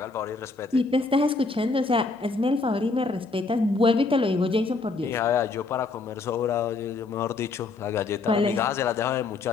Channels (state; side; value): quieter; right; 3.8 dB